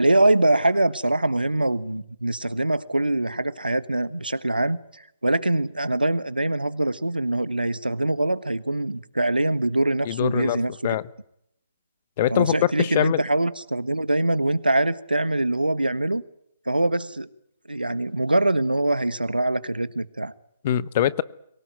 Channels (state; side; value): inverted; both; correlation -0.86